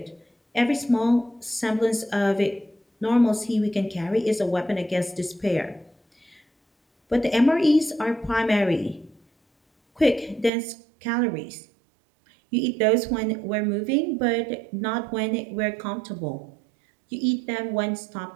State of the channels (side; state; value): left; drops out; at 10.5 s